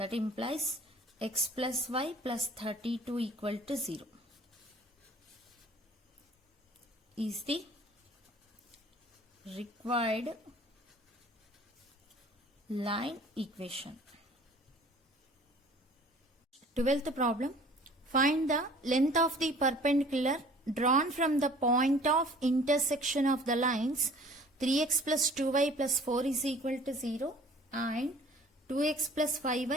implies x plus y plus 32 equal to 0 is the required line equation. 12th problem. Find the length of the perpendicular drawn from the point of intersection of the lines 3x plus 2y plus 4 is equal to 0 and 2x plus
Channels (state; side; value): normal; both; correlation 0.50